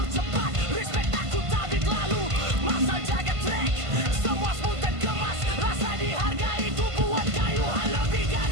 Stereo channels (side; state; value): left; late; 1.5 ms